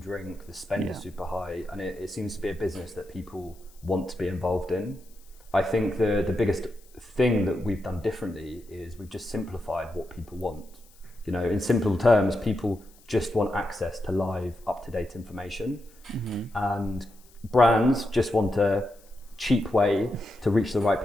drink, the spend is super high, and it seems to be a business that people want to be involved in. I think the biggest thing that we've done differently is we've just simplified what people want. In simple terms, people just want access to live, up-to-date information, and brands just want a cheap way to reach the right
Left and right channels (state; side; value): noise; left; hiss, 28 dB below the sound